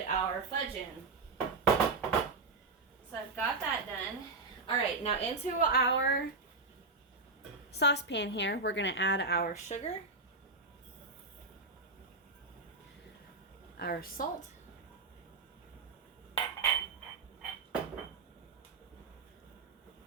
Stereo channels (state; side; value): quieter; left; 3.8 dB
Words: our fudge in. So I've got that done. Alright, now into our saucepan here, we're going to add our sugar, our salt, go